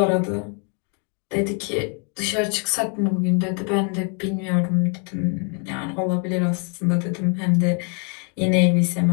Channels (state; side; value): quieter; right; 39.0 dB